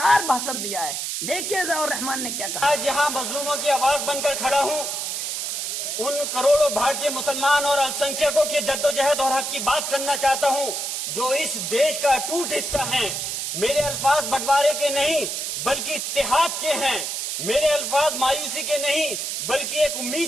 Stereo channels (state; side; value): noise; right; hiss, 3 dB below the sound